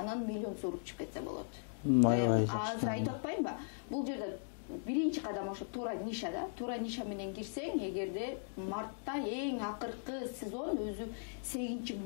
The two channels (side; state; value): right; silent; digital silence